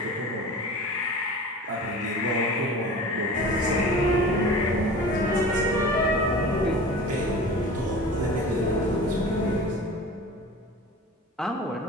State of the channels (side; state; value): both; normal; correlation 0.37